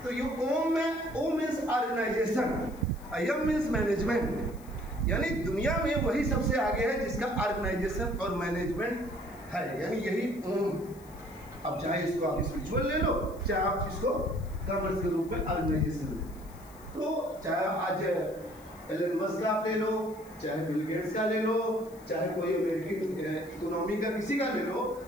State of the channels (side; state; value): left; noise; hiss, 24 dB below the sound